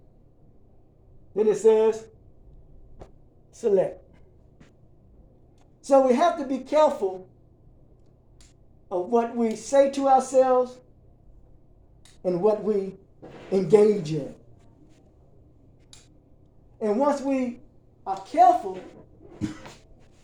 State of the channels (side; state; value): both; identical; correlation 1.00